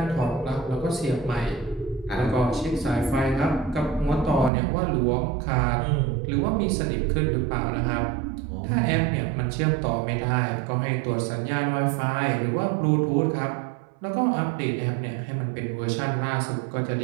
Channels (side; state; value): left; drops out; at 4.5 s